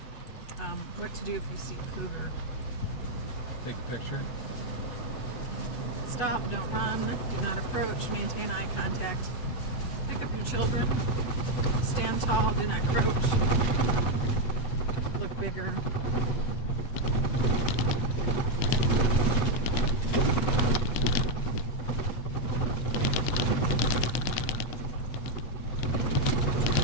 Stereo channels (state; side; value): late; right; 8.1 ms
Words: What to do if you see cougar. Take a picture. Stop, don't run, do not approach, maintain eye contact. Pick up your children. Stand tall, do not crouch. Look bigger.